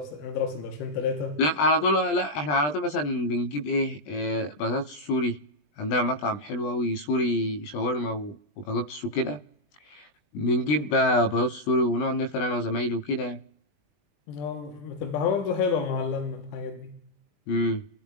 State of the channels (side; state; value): right; late; 20 ms